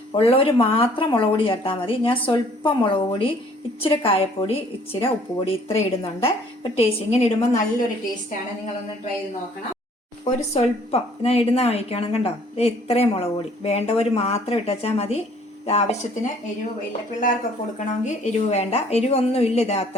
ഉള്ളവർ മാത്രം മുളക് പൊടി ചേർത്താൽ മതി. ഞാൻ സ്വല്പം മുളക് പൊടി, ഇച്ചിരി കായപ്പൊടി, ഇച്ചിരി ഉപ്പുപൊടി ഇത്ര ഇടുന്നുണ്ട്. ഒരു ടേസ്റ്റ് ഇങ്ങനെ ഇടുമ്പോൾ നല്ലൊരു ടേസ്റ്റാണ്. നിങ്ങളൊന്ന് ട്രൈ ചെയ്ത് നോക്കണം. ഒരു സ്വല്പം ഞാൻ ഇടുന്ന കഴിക്കണം. കണ്ടോ, ഇത്രയും മുളക് പൊടി വേണ്ടവർ മാത്രം ഇട്ടുവച്ചാൽ മതി. ആവശ്യത്തിന് എരിവ് ഇല്ല, പിള്ളേർക്കൊക്കെ കൊടുക്കണമെങ്കിൽ എരിവ് വേണ്ട, എരിവൊന്നും ഇല്ല. ഇത്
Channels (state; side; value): normal; both; correlation 0.58